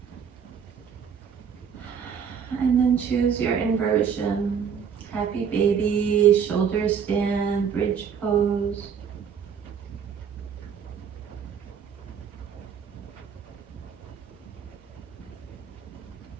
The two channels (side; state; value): left; quieter; 7.2 dB